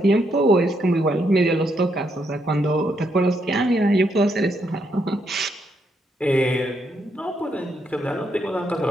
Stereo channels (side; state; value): both; normal; correlation 0.77